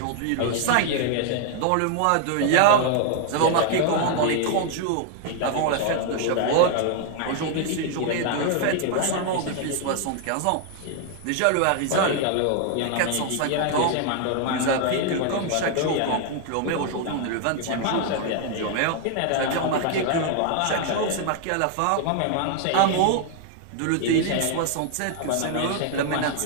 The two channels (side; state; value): both; different; correlation 0.00